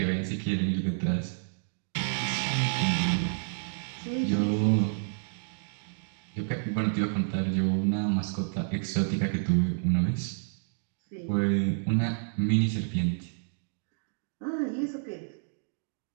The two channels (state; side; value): silent; left; digital silence